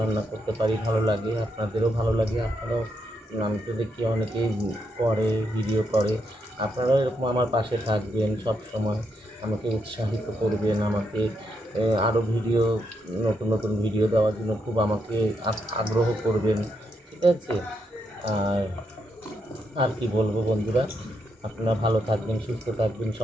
রান্না করতে পারি, ভালো লাগে, আপনাদেরও ভালো লাগে। আপনারাও, আমি তো দেখি অনেকেই করে, ভিডিও করে, আপনারাও এরকম আমার পাশে থাকবেন সব সময়, আমাকে উৎসাহিত করবেন, আমাকে আরও ভিডিও, নতুন নতুন ভিডিও দেওয়ার জন্য খুব আমাকে আগ্রহ করবেন, ঠিক আছে? আর আর কি বলবো বন্ধুরা, আপনারা ভালো থাকবেন, সুস্থ থাকবেন,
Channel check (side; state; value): both; normal; correlation 0.80